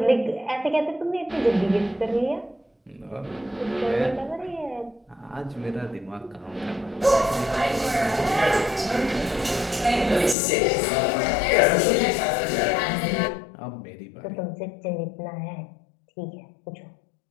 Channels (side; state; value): right; drops out; at 10.4 s